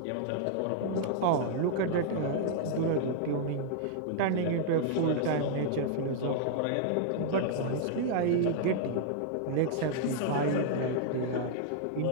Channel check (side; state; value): both; different; correlation -0.01